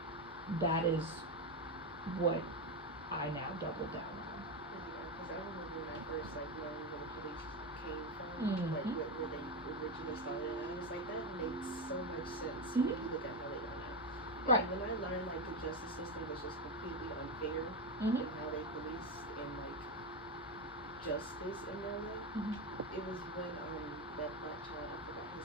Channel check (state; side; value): normal; both; correlation 0.12